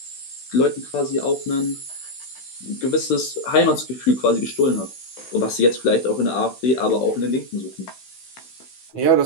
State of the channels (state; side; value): late; right; 16 ms